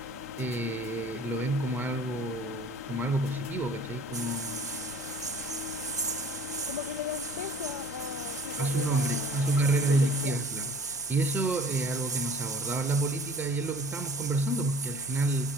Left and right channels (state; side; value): noise; left; hum, 22 dB below the sound